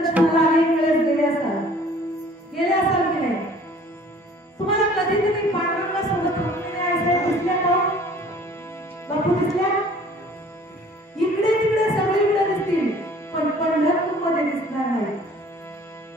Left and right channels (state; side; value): normal; both; correlation 0.52